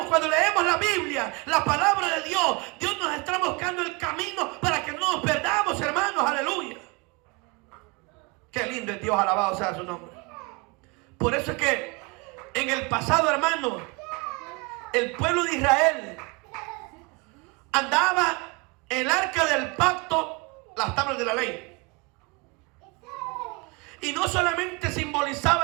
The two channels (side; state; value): left; quieter; 27.2 dB